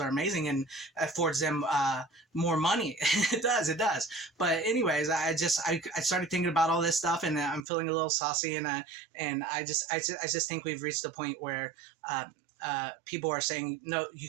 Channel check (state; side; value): drops out; left; at 7.7 s